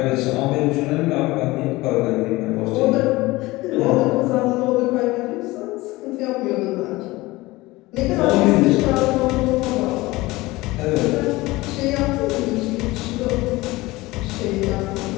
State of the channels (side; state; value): right; quieter; 20.2 dB